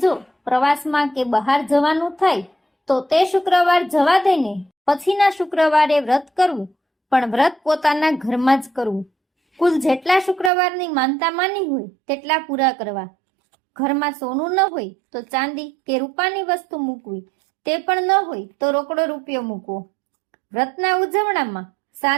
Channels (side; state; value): left; drops out; at 10.5 s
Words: જો પ્રવાસમાં કે બહાર જવાનું થાય તો તે શુક્રવાર જવા દઈને પછીના શુક્રવારે વ્રત કરવું, પણ વ્રત પોતાના ઘરમાં જ કરવું. કુલ જેટલા શુક્રવારની માનતા માની હોય તેટલા પૂરા કરવા. ઘરમાં સોનું ન હોય તો ચાંદી કે રૂપાની વસ્તુ મૂકવી, તે પણ ન હોય તો રોકડો રૂપિયો મૂકવો. વ્રતના ઉજવણામાં